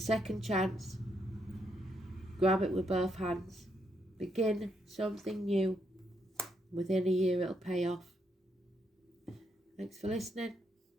chance. Grab it with both hands. Begin something new. Within a year it'll pay off. Thanks for listening.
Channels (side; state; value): both; normal; correlation 0.77